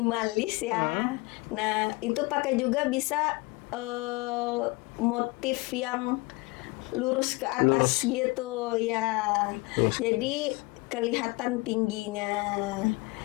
ya. Nah, itu pakai juga bisa motif yang lurus ke atas gitu ya. Jadi kelihatan tingginya.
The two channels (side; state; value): right; quieter; 24.6 dB